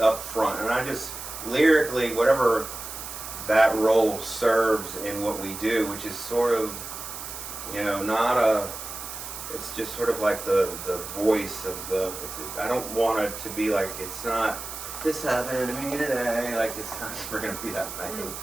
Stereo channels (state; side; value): noise; right; hiss, 9 dB below the sound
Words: front, and I just lyrically, whatever that role serves in what we do, which is sort of, you know, not a. It's just sort of like the voice of the. I don't want it to be like it's not. This happened to me today. Like it's not. We're gonna be that way.